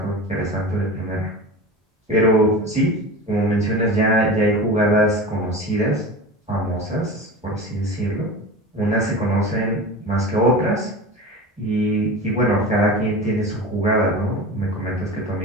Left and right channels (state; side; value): normal; both; correlation 0.31